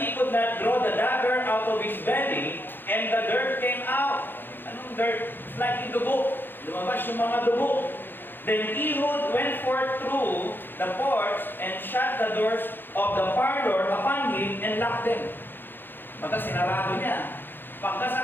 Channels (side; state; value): right; late; 0.097 ms